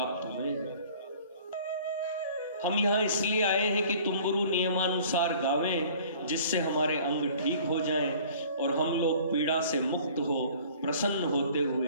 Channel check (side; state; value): both; inverted; correlation -0.50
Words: हुए हैं। हम यहाँ इसलिए आए हैं कि तुम्बरु नियमानुसार गावें, जिससे हमारे अंग ठीक हो जाएं और हम लोग पीड़ा से मुक्त हो प्रसन्न होते